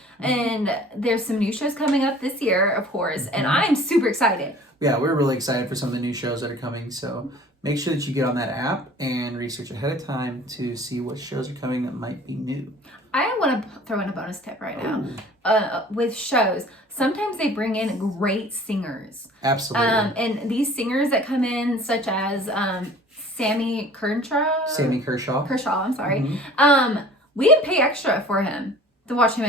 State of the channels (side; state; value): both; normal; correlation 0.47